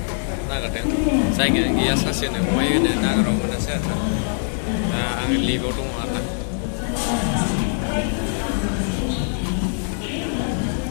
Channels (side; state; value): right; silent; 61 dB below the other